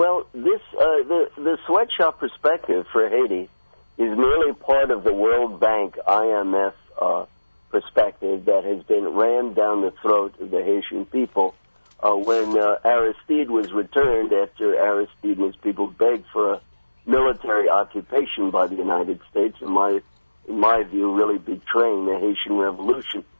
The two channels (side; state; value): both; inverted; correlation -1.00